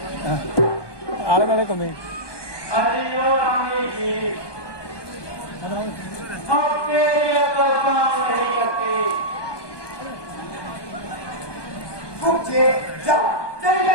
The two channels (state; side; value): late; right; 1.2 ms